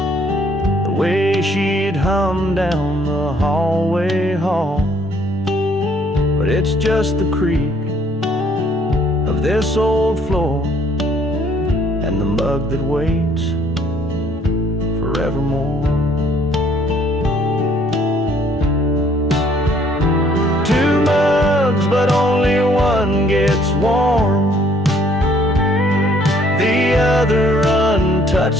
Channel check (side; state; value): both; normal; correlation 0.63